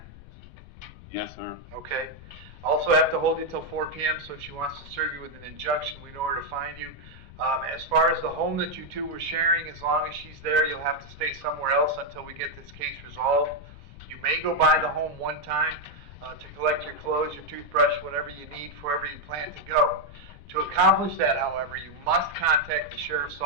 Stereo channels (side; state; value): left; noise; rumble, 17 dB below the sound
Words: Yes, sir. Okay. Also have to hold you till 4 p.m., so if she wants to serve you with an injunction, we know where to find you. As far as the home that you two were sharing, as long as she's there, you'll have to stay somewhere else until we get this case resolved. You may go by the home one time to collect your clothes, your toothbrush, whatever you need for wherever you plan to go. To accomplish that, however, you must contact the sheriff's